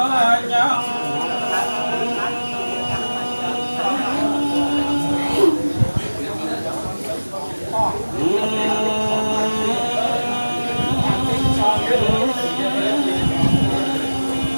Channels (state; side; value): inverted; both; correlation -1.00